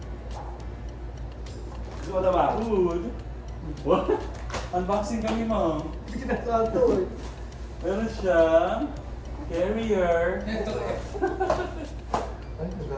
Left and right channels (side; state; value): both; identical; correlation 1.00